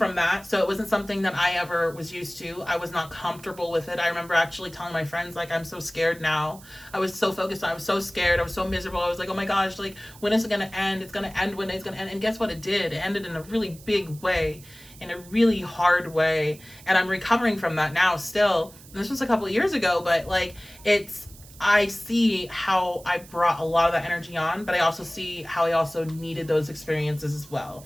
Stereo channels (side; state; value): right; noise; hiss, 21 dB below the sound